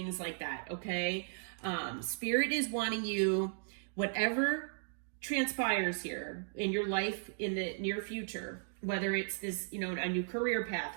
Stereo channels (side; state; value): left; silent; digital silence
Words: like that. Okay. Spirit is wanting you, whatever transpires here in your life in the near future, whether it's this, a new career